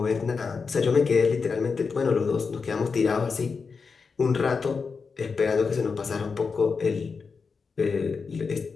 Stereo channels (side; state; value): right; quieter; 5.1 dB